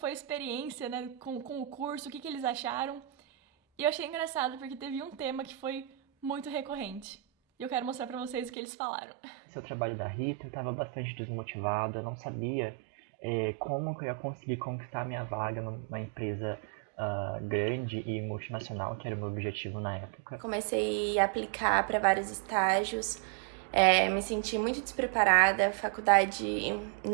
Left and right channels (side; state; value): left; drops out; at 8.5 s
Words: a experiência, né, com o curso, o que eles acharam. E eu achei engraçado porque teve um tema que foi muito recorrente. E eu quero mostrar pra vocês o que eles falaram. Esse é o trabalho da Rita, eu estava bastante desmotivada, eu não sabia como que eu ia conseguir conquistar minha vaga numa empresa grande e multinacional, que era o meu objetivo na época. Comecei a aplicar para vários estágios, me senti muito despreparada, a faculdade